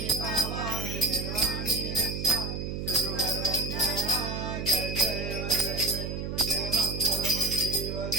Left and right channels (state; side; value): noise; right; hum, 4 dB below the sound